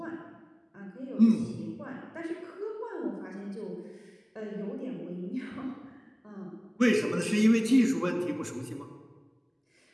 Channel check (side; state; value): both; identical; correlation 1.00